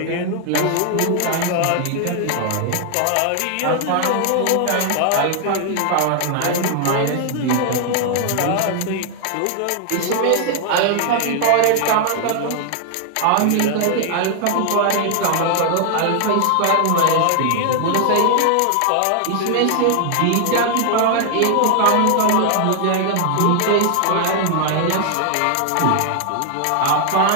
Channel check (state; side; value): different; both; correlation 0.00